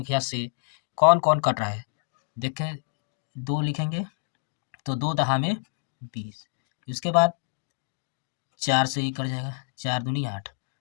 से कौन कौन कट रहा है। देखें, 2 लिखेंगे तो 2 दहा में 20। इसके बाद 4 से ही कट जाएगा, 4 दूनी 8।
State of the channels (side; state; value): right; silent; digital silence